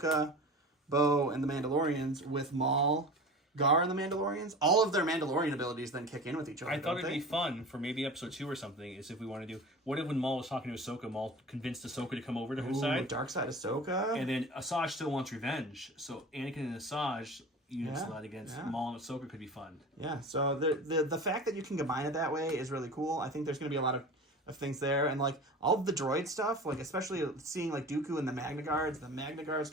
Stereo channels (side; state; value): both; normal; correlation 0.35